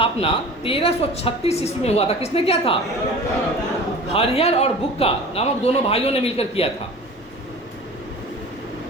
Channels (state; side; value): normal; both; correlation 0.39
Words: 1336 ईस्वी में हुआ था। किसने किया था? हरिहर और बुक्का नामक दोनों भाइयों ने मिलकर किया था।